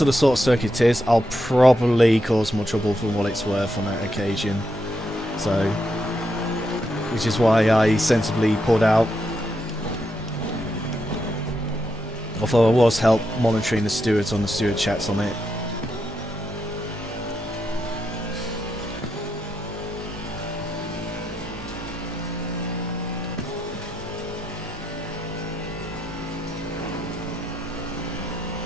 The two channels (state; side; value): normal; both; correlation 0.82